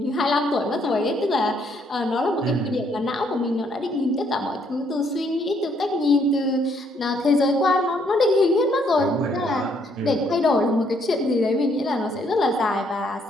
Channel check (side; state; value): both; normal; correlation 0.69